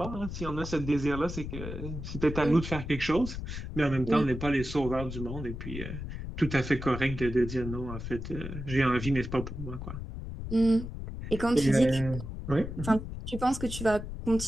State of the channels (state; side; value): noise; left; rumble, 7 dB below the sound